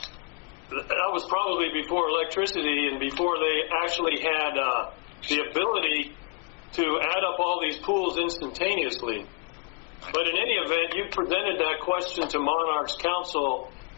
that was probably before electricity and before they actually had the ability to add up all these pools instantaneously. But in any event, you presented that question to Monarch's counsel,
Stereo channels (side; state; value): right; quieter; 31.6 dB